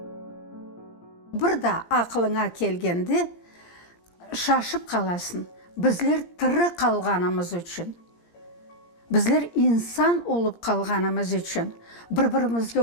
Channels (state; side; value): late; right; 17 ms